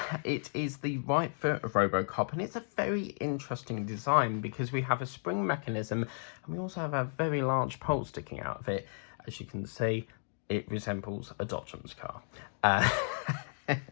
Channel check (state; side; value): silent; right; digital silence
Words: It is the right foot of Robocop, and it's a very interesting design because we have a spring mechanism and we also have a very large pole sticking out of it. As you can see, it resembles a Dodgems car. Yeah,